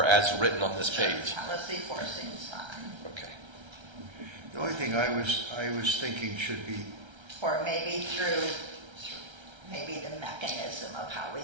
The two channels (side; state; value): left; late; 1.3 ms